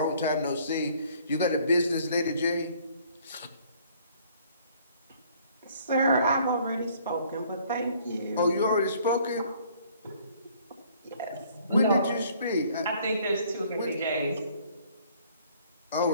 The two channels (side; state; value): both; inverted; correlation -0.59